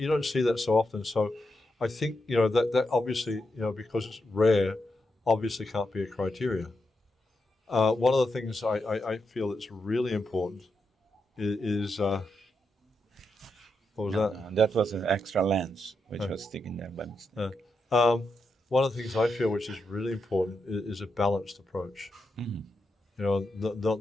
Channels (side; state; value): both; normal; correlation 0.85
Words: don't see that so often. So I think, that obviously, because it's rare, obviously can't be a criteria. One of the things I feel that's really important is what was that? That was an extra lens, which was sticking there by mistake. One of the things I feel which is really important is a balanced approach. Mm-hmm.